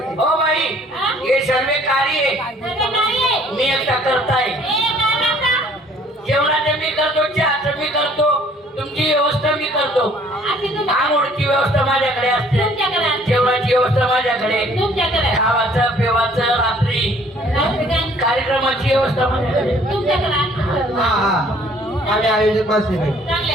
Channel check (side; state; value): both; normal; correlation 0.58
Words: हो बाई हे सर्व कार्य सगळे नाहीये. मी एकटा करताय काय करता? जेवणाचं मी करतो चहाचं मी करतो तुमची व्यवस्था मी करतो अशी तुम्ही- आंघोळची व्यवस्था माझ्याकडे असते तुमच्याकडे असते. जेवणाची व्यवस्था माझ्याकडे तुमच्याकडे खावाचं पेवाचं रात्री रात्री काय? कार्यक्रमाची व्यवस्था माझ्याकडे तुमच्याकडे असतं. हा हा आम्ही आयोजक माणसे बाई चांगले